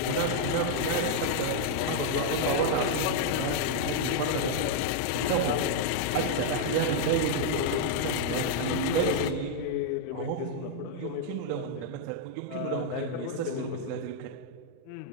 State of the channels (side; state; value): both; different; correlation -0.01